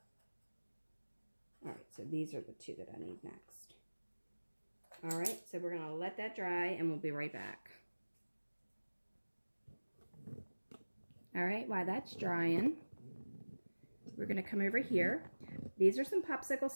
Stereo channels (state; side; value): inverted; both; correlation -1.00